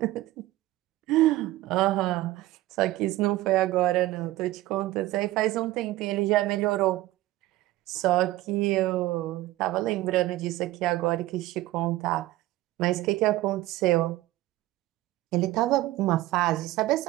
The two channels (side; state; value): left; quieter; 16.7 dB